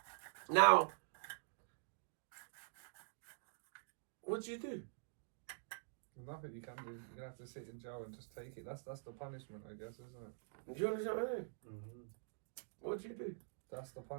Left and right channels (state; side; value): silent; left; digital silence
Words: Now, what do you do? Nothing you can do. You have to sit in jail and just take it. That's the punishment, I guess, isn't it? Do you understand what I mean? What do you do? That's the